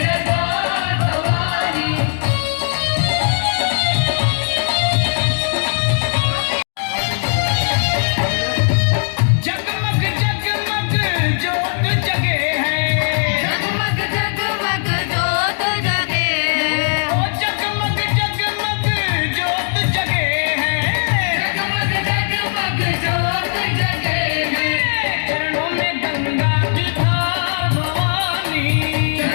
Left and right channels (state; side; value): silent; right; digital silence